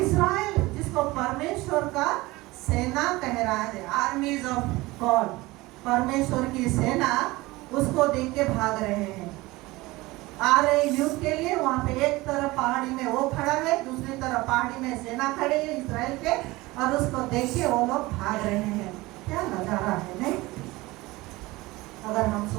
जिसको परमेश्वर का सेना कह रहा है, आर्मीज ऑफ गॉड, परमेश्वर की सेना, उसको देख के भाग रहे हैं। आ रहे युद्ध के लिए। वहां पे एक तरफ पहाड़ी में वो खड़ा है, दूसरी तरफ पहाड़ी में सेना खड़ी है इस्राएल के। और उसको देख के वो लोग भाग रहे हैं। क्या नजारा है, नहीं? अगर हम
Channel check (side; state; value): left; quieter; 20.7 dB